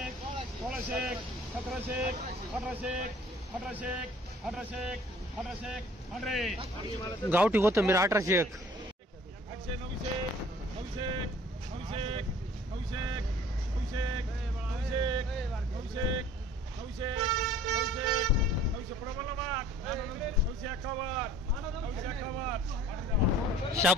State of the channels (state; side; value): normal; both; correlation 0.51